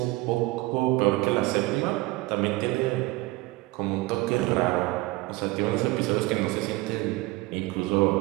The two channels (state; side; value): quieter; left; 20.6 dB